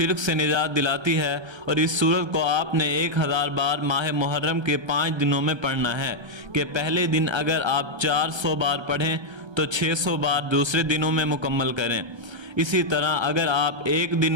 سے نجات دلاتی ہے، اور اس سورت کو آپ نے 1000 بار ماہ محرم کے 5 دنوں میں پڑھنا ہے کہ پہلے دن اگر آپ 400 بار پڑھیں تو 600 بار دوسرے دنوں میں مکمل کریں۔ اسی طرح اگر آپ ایک دن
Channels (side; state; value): left; late; 1.3 ms